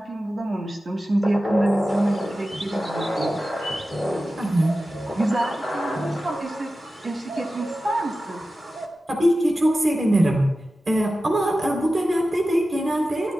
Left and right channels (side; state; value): both; normal; correlation 0.94